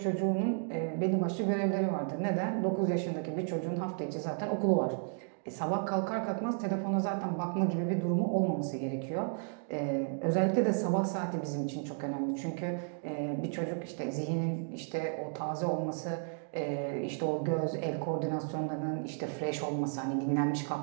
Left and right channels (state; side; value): silent; left; 56 dB below the other